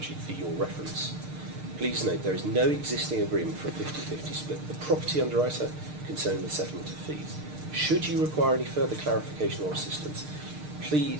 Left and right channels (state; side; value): late; left; 6.6 ms